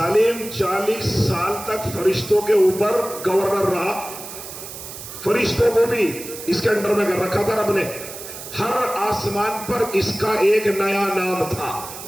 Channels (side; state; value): right; noise; hiss, 12 dB below the sound